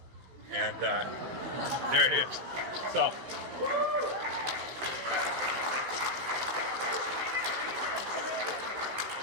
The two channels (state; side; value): late; left; 16 ms